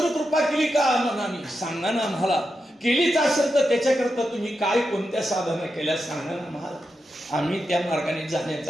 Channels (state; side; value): normal; both; correlation 0.87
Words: कृपा केली का मनाने सांगा ना आम्हाला. केलीच असेल तर त्याच्याकरता तुम्ही काय कोणत्या साधना केल्या सांगा ना आम्हाला. आम्ही त्या मार्गाने